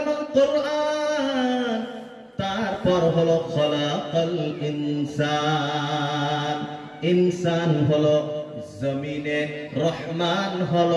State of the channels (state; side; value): identical; both; correlation 1.00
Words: কোরআন, তারপর হলো খলাকাল ইনসান। ইনসান হলো জমিনে, রহমান